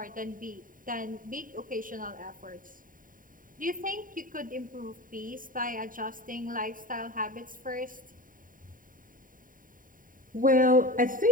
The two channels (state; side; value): late; left; 0.40 ms